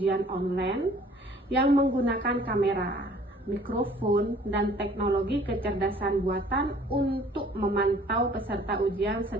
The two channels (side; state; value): both; normal; correlation 0.54